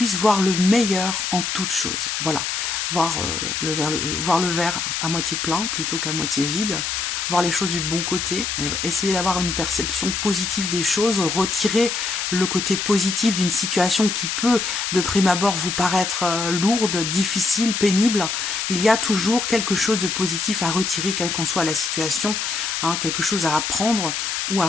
voir le meilleur en toute chose. Voilà, voir, voir le verre à moitié plein plutôt qu'à moitié vide, voir les choses du bon côté, essayer d'avoir une perception positive des choses, retirer le côté positif d'une situation qui peut de prime abord vous paraître lourde, difficile, pénible. Il y a toujours quelque chose de positif à retirer, quelle qu'en soit la situation, hein, quelque chose à apprendre ou à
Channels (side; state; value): left; noise; hiss, 2 dB below the sound